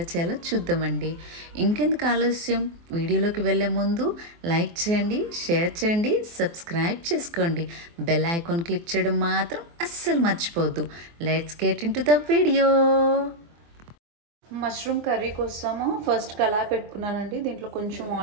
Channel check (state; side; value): late; left; 24 ms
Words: చేయాలో చూద్దామండి. ఇంకెందుకు ఆలస్యం, వీడియోలోకి వెళ్ళే ముందు లైక్ చేయండి, షేర్ చేయండి, సబ్స్క్రైబ్ చేసుకోండి. బెల్ ఐకాన్ క్లిక్ చేయడం మాత్రం అస్సలు మర్చిపోవద్దు. Let's get in to the video. Mushroom curry కోసము ఫస్ట్ కళాయి పెట్టుకున్నానండి. దీంట్లో కొంచెం